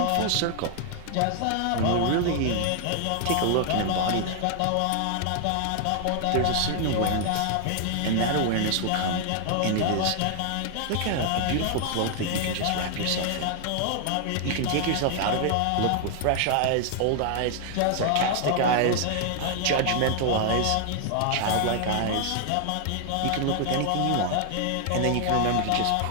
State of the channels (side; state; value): both; different; correlation 0.00